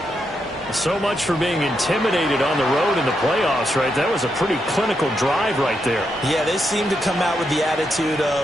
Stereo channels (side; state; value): both; normal; correlation 0.82